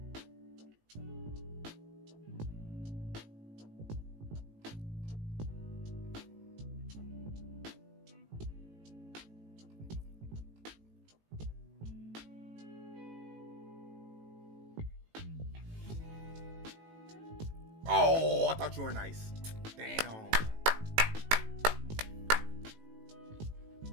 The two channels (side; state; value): left; late; 18 ms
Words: Oh, I thought you were nice. Damn.